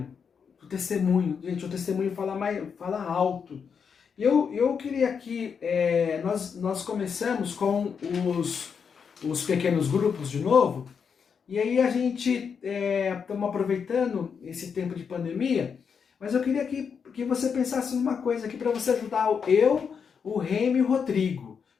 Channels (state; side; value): quieter; right; 6.4 dB